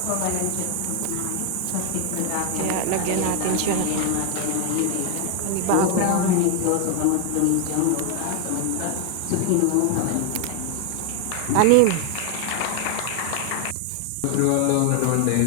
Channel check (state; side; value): different; both; correlation 0.01